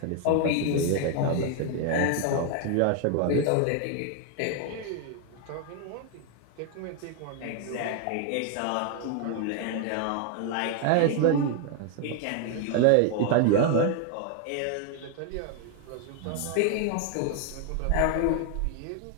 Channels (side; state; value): both; different; correlation 0.00